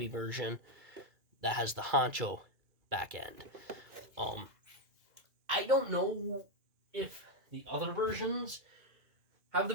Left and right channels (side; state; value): left; late; 2.3 ms